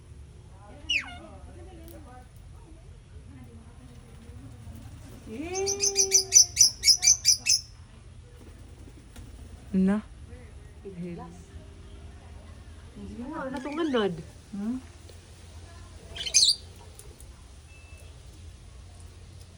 Na. Hindi mo, natunganad.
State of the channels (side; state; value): both; identical; correlation 1.00